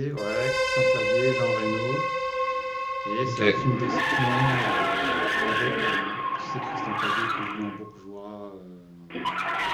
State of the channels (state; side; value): identical; both; correlation 1.00